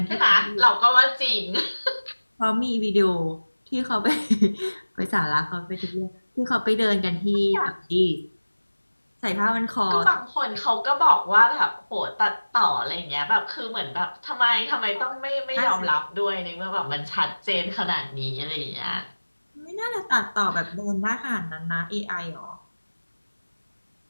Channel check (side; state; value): both; inverted; correlation -1.00